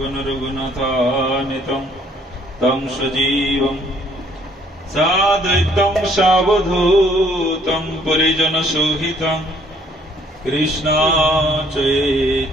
रघुनाथान्वितं तं सजीवं साद्वैतं सावधूतं परिजनसहितं कृष्ण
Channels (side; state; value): both; normal; correlation 0.62